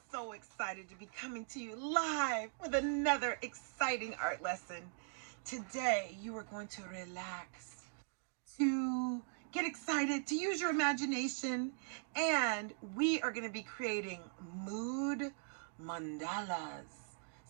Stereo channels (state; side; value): silent; left; digital silence